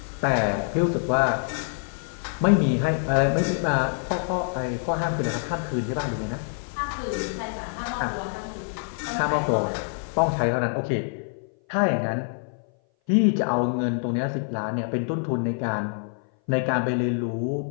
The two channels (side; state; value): right; silent; 58 dB below the other